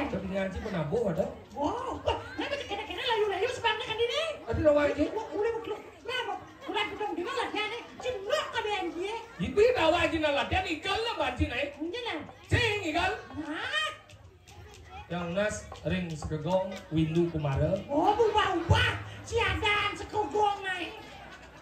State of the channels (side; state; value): both; identical; correlation 1.00